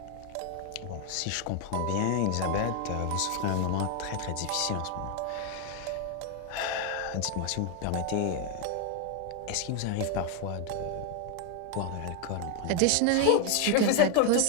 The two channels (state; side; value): different; both; correlation 0.00